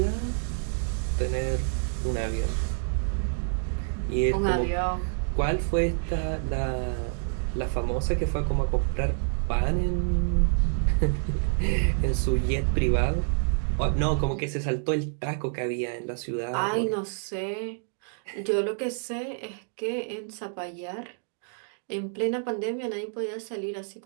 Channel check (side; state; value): left; silent; digital silence